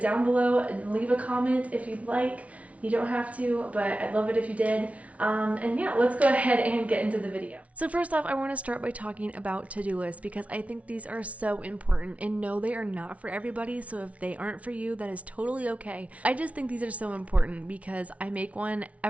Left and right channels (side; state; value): left; late; 0.066 ms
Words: below and leave a comment if you'd like. You don't have to, but I'd love it if you did. And yeah, let's go ahead and get into the video. So first off, I want to start by talking about to-do lists because I think these are so important, and no, they are not for everybody. So if they aren't for you, that is totally okay. I just think these are so important because I make one